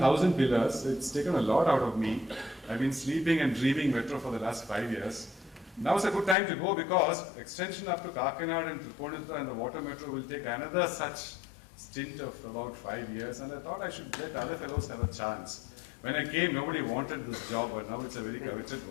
pillars. It's taken a lot out of me. I've been sleeping and dreaming metro for the last 5 years. Now is a good time to go because extension up to Kakinad and Tripunithura and the water metro will take another such stint of about 5 years, and I thought I should let other fellows have a chance. When I came, nobody wanted this job, but now it's a very coveted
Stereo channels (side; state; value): right; drops out; at 6.4 s